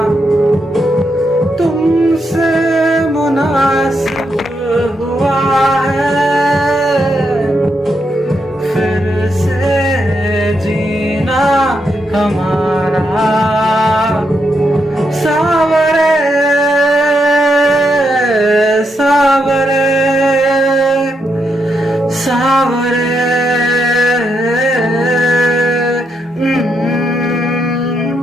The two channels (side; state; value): both; normal; correlation 0.81